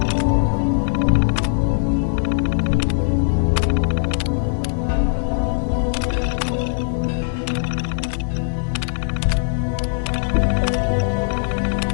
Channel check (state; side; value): silent; right; 66 dB below the other